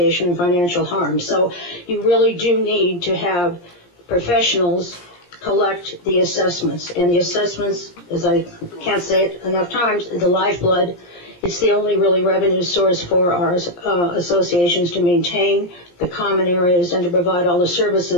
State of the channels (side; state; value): right; late; 17 ms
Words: in financial harm. So you really do need to have professionals collect the assessments. And the assessments, as I can't say it enough times, the lifeblood. It's the only really revenue source for our associations to maintain the common areas and to provide all the